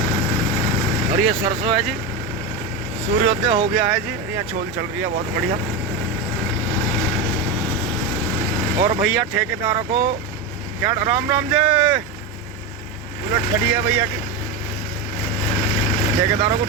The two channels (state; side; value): quieter; left; 3.3 dB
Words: और ये सरसों है जी। सूर्योदय हो गया है जी, यहाँ छोल चल रही है बहुत बढ़िया। और भैया ठेकेदारों को क्या राम राम जी, बुलेट खड़ी है भैया की। ठेकेदारों को